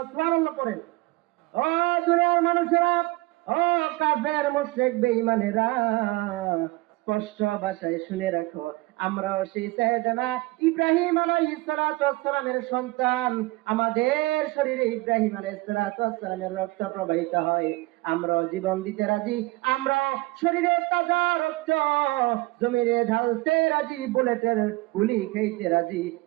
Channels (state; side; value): quieter; left; 21.3 dB